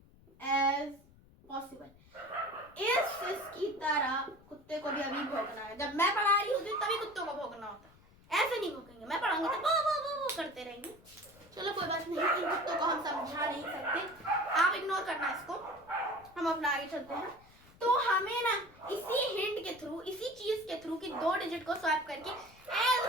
as possible. इसकी तरह कुत्ते को भी अभी भौंकना है। जब मैं पढ़ा रही होती तभी कुत्तों को भौंकना होता है, ऐसे नहीं भौंकेंगे। मैं पढ़ाऊंगी तो वो करते रहेंगे। चलो कोई बात नहीं, इन कुत्तों को हम समझा नहीं सकते, आप इग्नोर करना इसको, हम अपना आगे चलते हैं। तो हमें ना इसी हिंट के थ्रू, इसी चीज के थ्रू कि 2 डिजिट को स्वैप करके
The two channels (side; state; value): left; noise; rumble, 26 dB below the sound